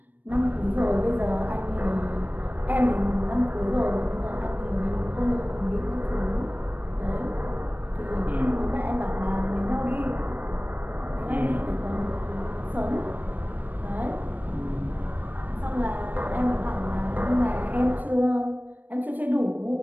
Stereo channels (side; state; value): left; late; 0.086 ms